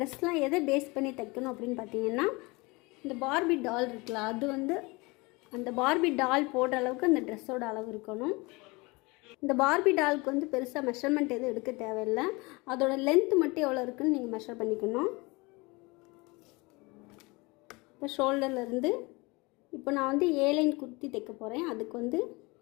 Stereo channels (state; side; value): quieter; right; 25.3 dB